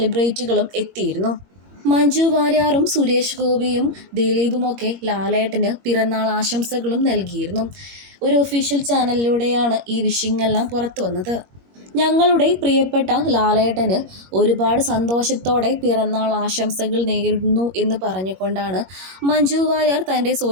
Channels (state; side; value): late; left; 21 ms